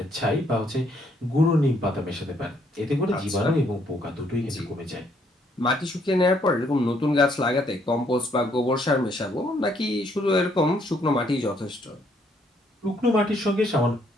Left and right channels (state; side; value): normal; both; correlation 0.69